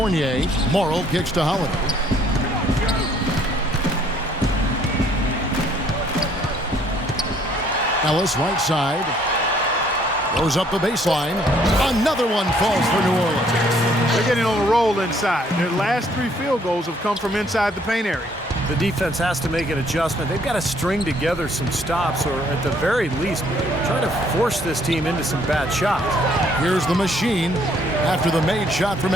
Morrow kicks to Holiday. Ellis right side. Goes up the baseline. Another one falls for New Orleans. They're getting on a roll inside. Their last 3 field goals have come from inside the paint area. The defense has to make an adjustment. They've got to string together some stops, or at the very least, try to force this team into some bad shots. Here's the machine after the made shot from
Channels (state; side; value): normal; both; correlation 0.64